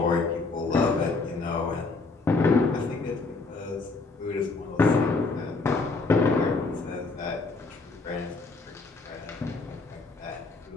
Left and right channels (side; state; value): right; quieter; 3.8 dB